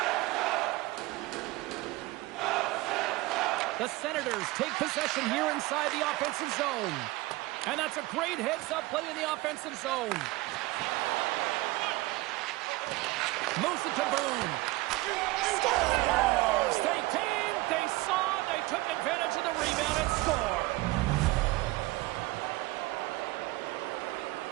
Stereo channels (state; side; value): quieter; left; 20.4 dB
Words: The Senators take possession here inside the offensive zone. And that's a great heads-up play in the offensive zone. Moves it to Boone. Scores! They came, they saw, they took advantage of the rebound and score.